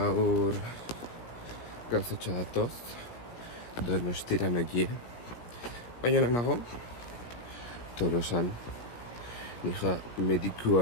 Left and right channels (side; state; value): right; late; 17 ms